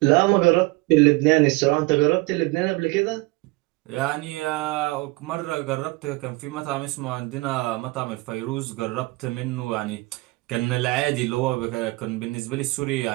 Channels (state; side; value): quieter; left; 23.5 dB